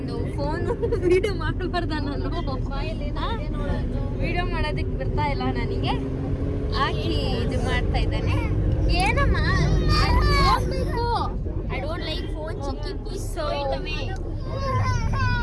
ಫೋನು ವಿಡಿಯೋ ಮಾಡಬಾರ್ದ, ನಾನು ವಿಡಿಯೋ ಮಾಡೋದಕ್ಕೆ ಬರ್ತಾ ಇಲ್ಲ ನನಗೆ, ಹಾಕಿ ಇದು ಮಾಡ್ತಾ ಇದ್ದಾನೆ. ಏನಮ್ಮ ಹೋಗ್ಬೇಕು, I don't like phone chikki, please so it away.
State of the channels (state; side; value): identical; both; correlation 1.00